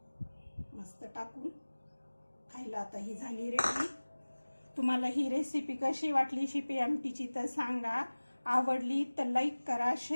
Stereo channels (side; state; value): both; inverted; correlation -1.00